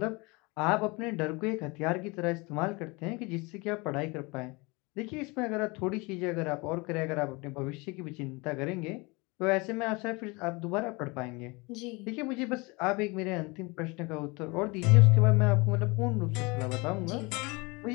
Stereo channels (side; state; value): right; quieter; 26.4 dB